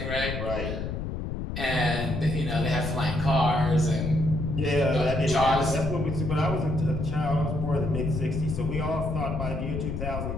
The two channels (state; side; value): noise; left; rumble, 4 dB below the sound